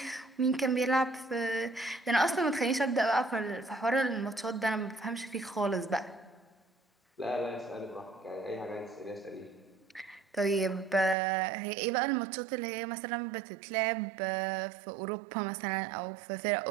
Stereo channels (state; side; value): drops out; left; at 11.2 s